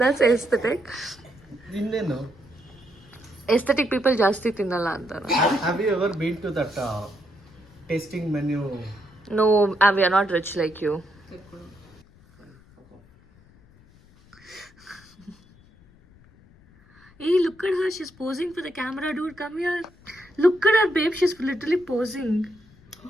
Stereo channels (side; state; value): left; noise; rumble, 27 dB below the sound